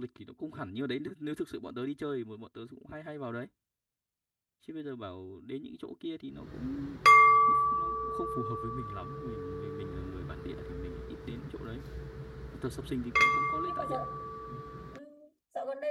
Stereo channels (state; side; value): identical; both; correlation 1.00